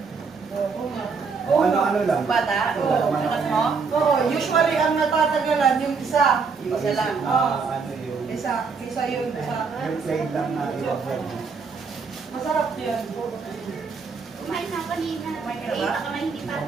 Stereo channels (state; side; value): quieter; left; 5.1 dB